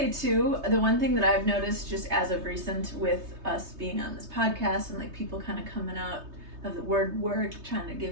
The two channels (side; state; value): left; late; 3.2 ms